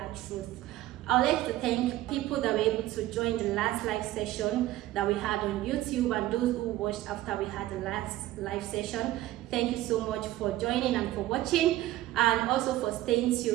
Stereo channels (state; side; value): quieter; left; 15.4 dB